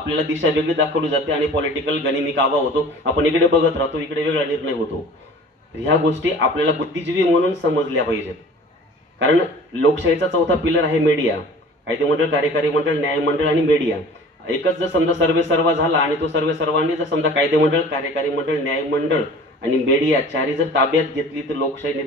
दिशा वेगळी दाखवली जाते आणि पॉलिटिकल गनिमी कावा होतो. आपण इकडे बघत राहतो, इकडे वेगळा निर्णय होतो. ह्या गोष्टी आपल्याला बुद्धिजीवी म्हणून समजल्या पाहिजेत. कारण लोकशाहीचा चौथा पिलर आहे मीडिया. कायदे मंडळ, कार्यकारी मंडळ, न्यायमंडळ आणि मीडिया. एकच जर समजा सर्वे सर्वा झाला आणि तो सर्वे सर्वांनी जर समजा कायदे मंडळ, कार्यकारी मंडळ, न्यायमंडळ आणि मीडिया चारही जर ताब्यात घेतली तर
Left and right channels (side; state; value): both; normal; correlation 0.44